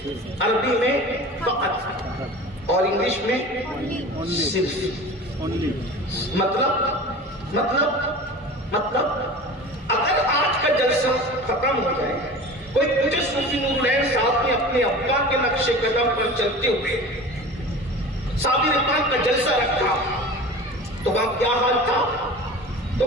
عربی میں فقط، اور انگلش میں صرف. مطلب اگر آج کا جلسہ ختم ہو جائے، کوئی پوچھے صوفی نور العین صاحب نے اپنے ابا کے نقش قدم پر چلتے ہوئے صابر پاک کا جلسہ رکھا تو وہاں کیا حال تھا؟ تو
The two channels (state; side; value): normal; both; correlation 0.36